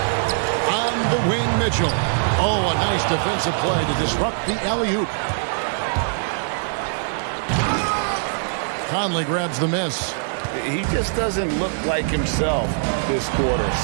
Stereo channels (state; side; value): silent; left; 58 dB below the other